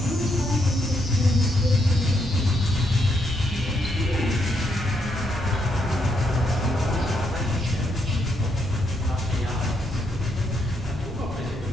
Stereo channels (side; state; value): both; normal; correlation 0.77